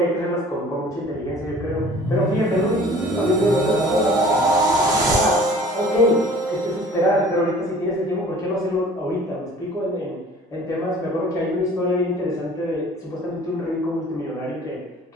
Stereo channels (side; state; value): both; normal; correlation 0.49